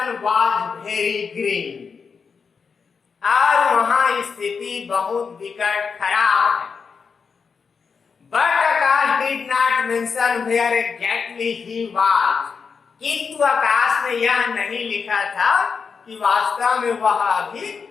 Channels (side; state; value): right; quieter; 5.6 dB